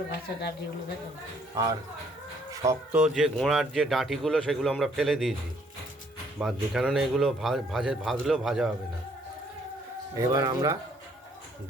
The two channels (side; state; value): both; normal; correlation 0.65